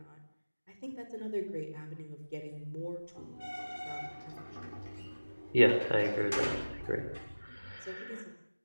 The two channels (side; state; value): both; inverted; correlation -1.00